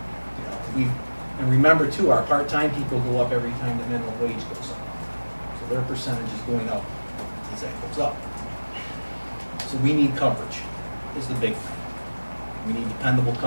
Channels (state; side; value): inverted; both; correlation -1.00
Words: And remember too, our part-time people go up every time the minimum wage goes up. So their percentage is going up as that goes up. So we need coverage, is the big thing. We need dependable